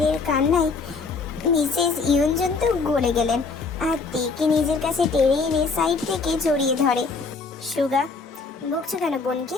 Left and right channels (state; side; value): quieter; right; 4.4 dB